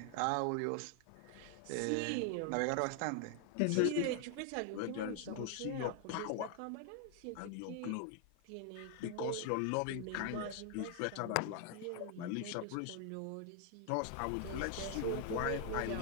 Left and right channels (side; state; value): both; different; correlation 0.00